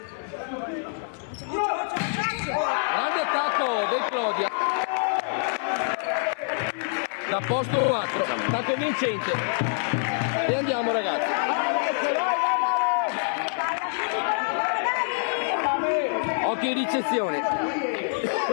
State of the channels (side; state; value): right; silent; 59 dB below the other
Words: Grande attacco del Clodia. Da posto 4, attacco vincente. E andiamo ragazzi. Occhio in ricezione.